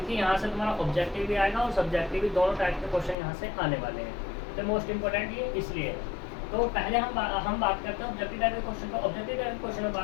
यहाँ से तुम्हारा ऑब्जेक्टिव भी आएगा और सब्जेक्टिव भी, दोनों टाइप के क्वेश्चन यहाँ से आने वाले हैं। तो मोस्ट इंपॉर्टेंट ये इसलिए है। तो पहले हम बात करते हैं ऑब्जेक्टिव टाइप के क्वेश्चन का। ऑब्जेक्टिव टाइप के क्वेश्चन में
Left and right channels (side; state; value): right; drops out; at 3.2 s